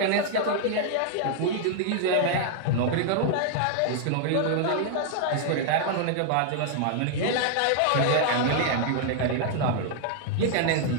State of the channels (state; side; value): different; both; correlation -0.01